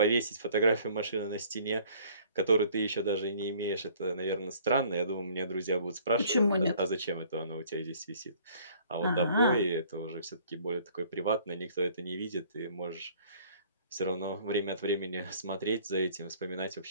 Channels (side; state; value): both; inverted; correlation -0.56